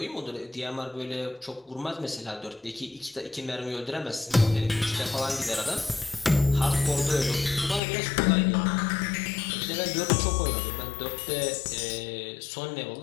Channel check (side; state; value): right; drops out; at 7.8 s